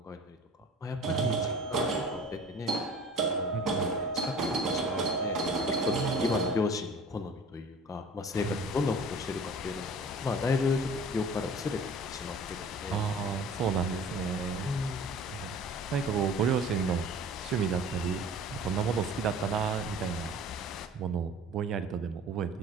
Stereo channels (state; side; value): normal; both; correlation 0.44